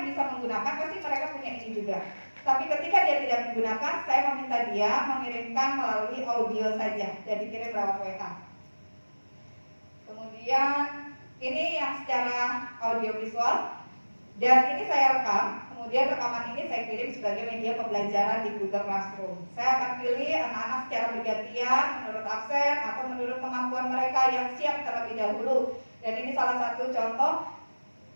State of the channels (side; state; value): both; inverted; correlation -1.00